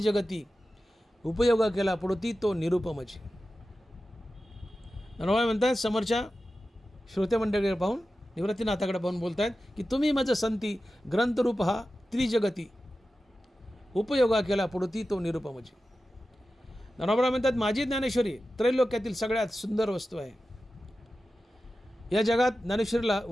उपयोग केला पडोती तो निरुपमची. ज्ञानोबा म्हणतात समोरच्या श्रोते मंडळीकडे पाहून, निवृत्तीनाथाकडे पाहून बोलत आहेत की तुम्ही मज संती ग्रंथरूप हा त्रिजगती, उपयोगा केला पडोती तो निरुपमची. ज्ञानोबा म्हणतात माझी ज्ञानेश्वरी त्रैलोक्यातील सगळ्यात सुंदर वस्तू आहे. या जगात ज्ञानेश्वरीला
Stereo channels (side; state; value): both; normal; correlation 0.93